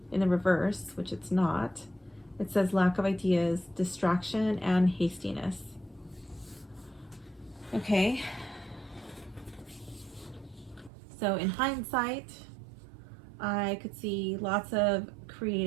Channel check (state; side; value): drops out; left; at 10.9 s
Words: In the reverse, which it's not, it says lack of ideas, distraction, and hastiness. Okay. So in hindsight, I could see lots of